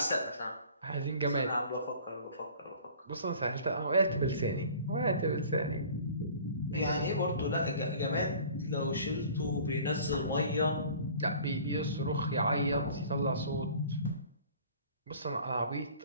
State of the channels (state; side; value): inverted; both; correlation -0.47